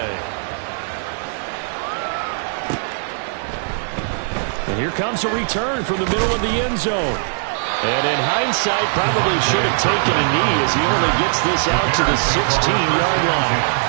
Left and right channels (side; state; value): left; silent; digital silence